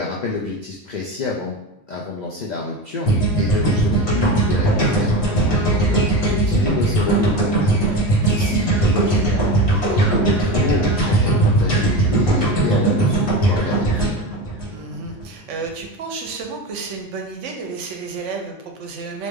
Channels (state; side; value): normal; both; correlation 0.23